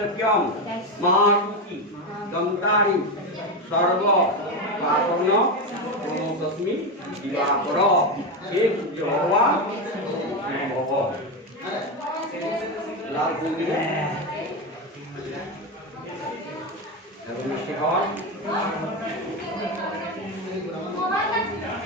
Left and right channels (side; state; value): both; normal; correlation 0.13